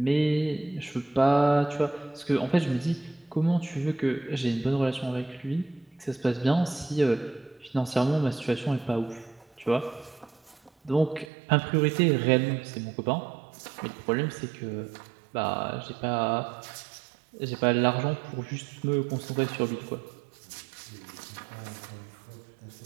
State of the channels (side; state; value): left; drops out; at 11.2 s